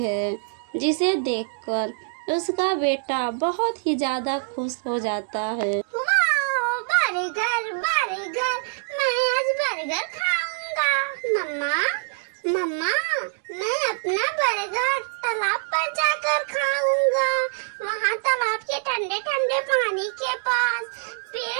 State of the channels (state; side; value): silent; left; digital silence